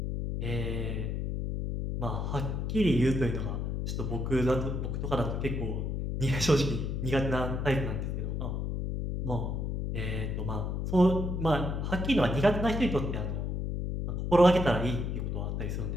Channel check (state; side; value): noise; left; hum, 2 dB below the sound